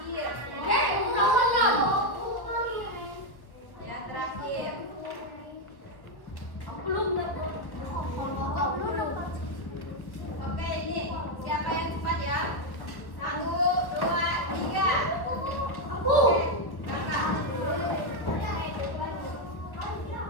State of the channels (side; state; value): right; late; 1.3 ms